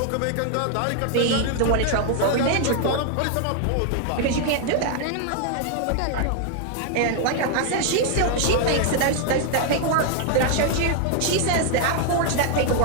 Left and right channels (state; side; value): different; both; correlation 0.00